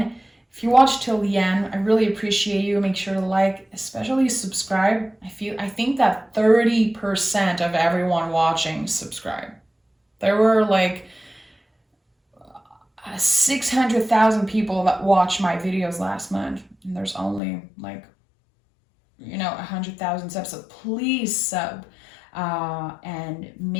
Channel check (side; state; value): right; drops out; at 17.4 s